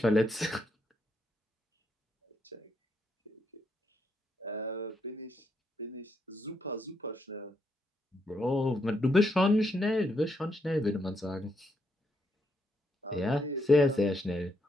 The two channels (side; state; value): both; normal; correlation 0.78